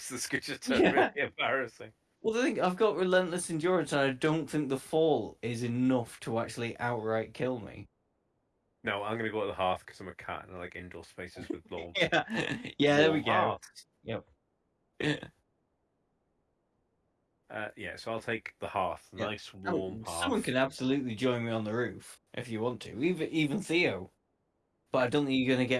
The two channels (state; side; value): identical; both; correlation 1.00